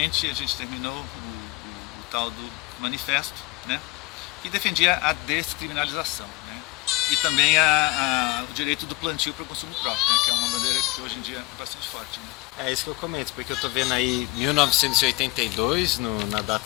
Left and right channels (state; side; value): quieter; right; 21.7 dB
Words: a gente terminou o tal do manifesto, né, que defendia a descriminalização, né, e também o direito do plantio para o consumo próprio, né, que é uma bandeira que hoje em dia é bastante forte, né. É isso que eu comento, porque eu estou vendo aí 1982 na